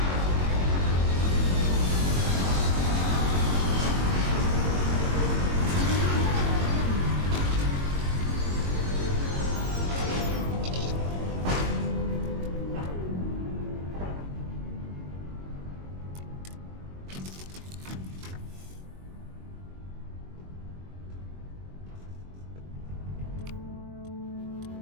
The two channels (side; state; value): left; late; 22 ms